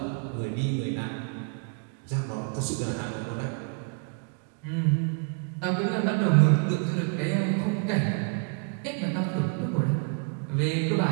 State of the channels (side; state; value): left; quieter; 38.5 dB